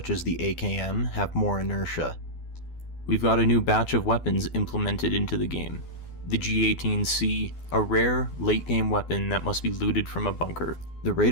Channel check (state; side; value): late; right; 12 ms